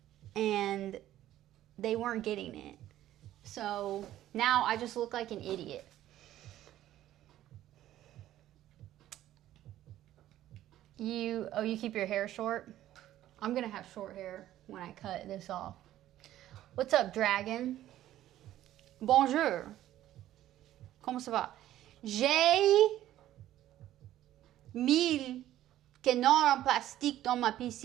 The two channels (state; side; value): quieter; left; 13.3 dB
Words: and they weren't getting it. So now I just look like an idiot. You keep your hair short? I'm gonna have short hair when I cut this off. What's up, dragon? Bonjour. Comment ça va? J'ai 1,000 canards en plastique dans ma